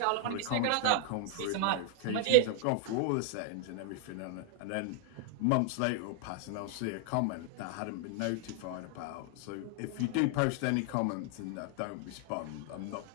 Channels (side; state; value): both; different; correlation 0.00